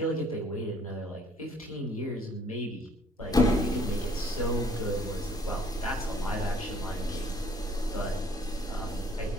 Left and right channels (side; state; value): both; normal; correlation 0.60